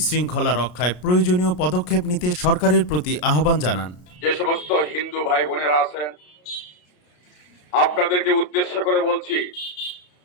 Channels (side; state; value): right; late; 33 ms